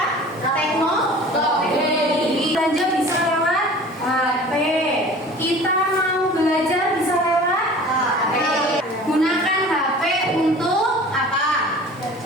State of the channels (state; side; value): normal; both; correlation 0.43